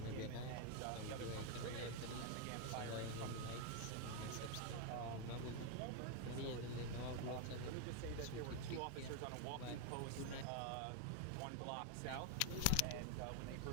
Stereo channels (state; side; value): different; both; correlation 0.01